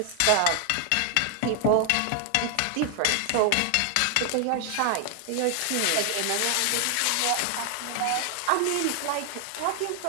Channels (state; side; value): different; both; correlation 0.00